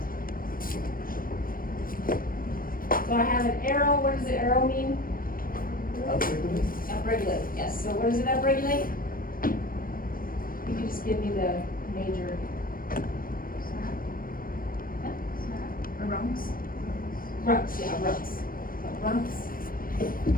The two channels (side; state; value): right; late; 0.41 ms